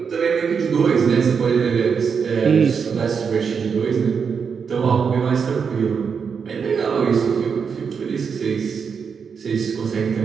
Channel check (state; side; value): quieter; left; 6.2 dB